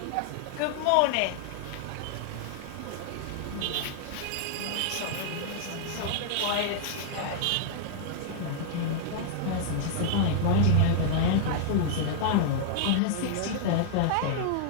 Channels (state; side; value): different; both; correlation -0.01